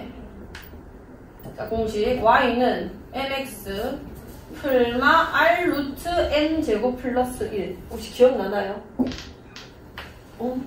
자, 공식 y는 mx 풀마 r 루트 n 제곱 플러스 1 혹시 기억나나요?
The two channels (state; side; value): identical; both; correlation 1.00